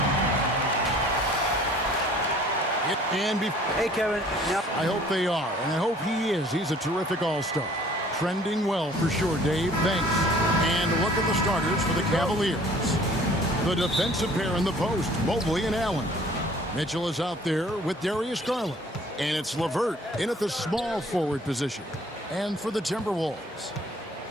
Hey, Kevin. I hope they are, and I hope he is. He's a terrific all-star. Trending well for sure, Dave. Thanks. And look at the starters for the Cavaliers. The defensive pair in the post, Mobley and Allen. Mitchell is out there with Darius Garland. And it's LeVert in at the small forward position. And for the Timberwolves,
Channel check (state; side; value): normal; both; correlation 0.53